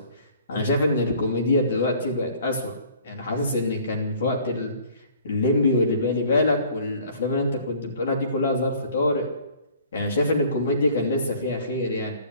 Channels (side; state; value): both; inverted; correlation -0.53